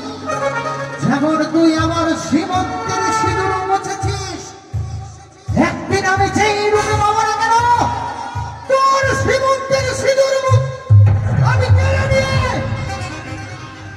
যেমন তুই আমার শ্রীমন্তের সিঁদুর মুছেছিস, একদিন আমি যেই রূপে পাবো না কেন তোর শ্রীমন্তের সিঁদুর আমি কেড়ে নিয়ে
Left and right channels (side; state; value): both; identical; correlation 1.00